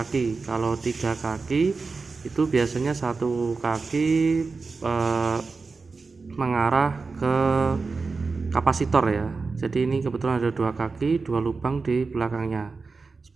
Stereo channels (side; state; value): left; quieter; 4.3 dB